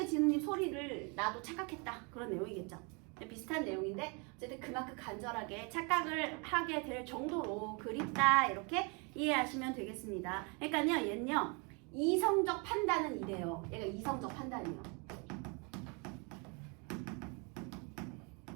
지는 잎 소리를 나도 착각했다, 그런 내용이겠죠. 비슷한 내용인데 어쨌든 그만큼 간절하게 착각을 하게 될 정도로 그립다, 이렇게 이해하시면 되겠습니다. 그러니까요, 얘는요, 이성적 판단은 이래요. 얘가 이성적 판단이에요.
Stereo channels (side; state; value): left; quieter; 32.7 dB